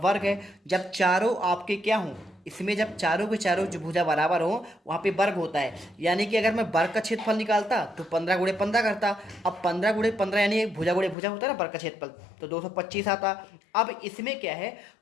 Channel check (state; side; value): drops out; right; at 11.2 s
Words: है। जब चारों आपके क्या हों, इसमें जब चारों के चारों जो भुजा बराबर हो वहाँ पे वर्ग होता है। यानी कि अगर मैं वर्ग का क्षेत्रफल निकालता तो 15 × 15 करता। अब 15 × 15 यानी भुजा गुणे भुजा होता है ना वर्ग का क्षेत्रफल, तो 225 आता। अब इसमें क्या है,